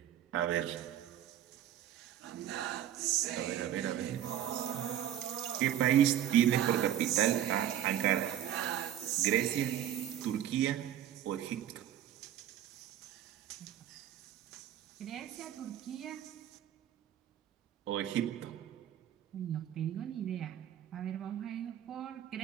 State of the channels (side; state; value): left; quieter; 11.1 dB